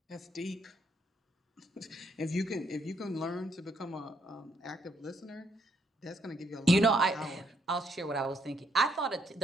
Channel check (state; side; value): normal; both; correlation 0.73